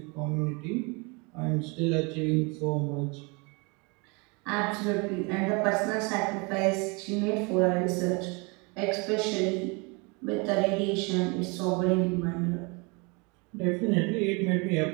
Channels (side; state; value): left; quieter; 30.1 dB